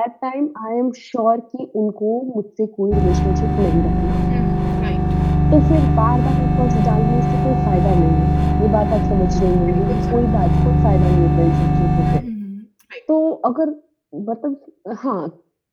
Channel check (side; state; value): both; identical; correlation 1.00